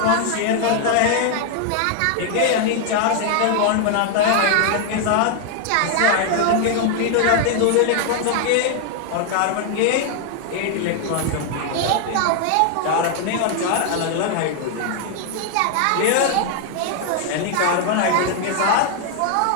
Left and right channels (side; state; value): both; different; correlation 0.00